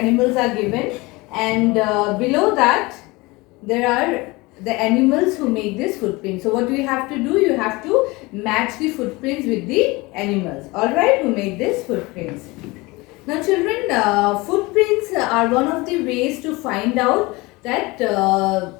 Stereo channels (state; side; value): quieter; right; 23.2 dB